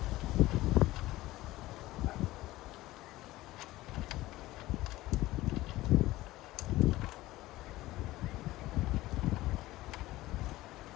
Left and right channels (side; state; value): right; quieter; 17.5 dB